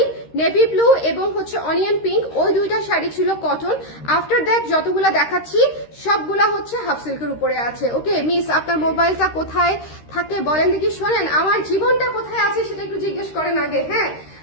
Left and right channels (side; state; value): right; late; 13 ms